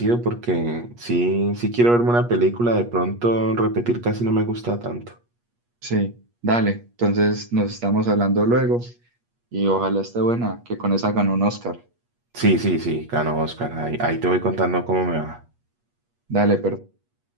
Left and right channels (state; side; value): late; left; 8.4 ms